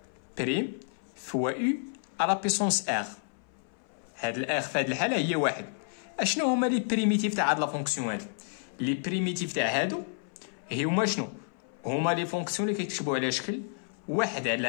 بريم فوا u على بويسونس ار. هاد الار في هاد الحاله هي واحد. اشنو هما لي بريميتيف تاع هاد لا فونكسيون هادي؟ لي بريميتيف تاع هادو هما شنو؟ هما لي فونكسيون اللي كيكتبوا على شكل واحد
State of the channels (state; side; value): silent; right; 58 dB below the other